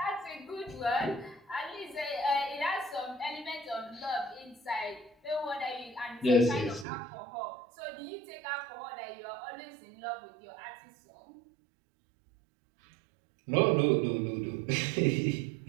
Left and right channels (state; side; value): drops out; left; at 6.9 s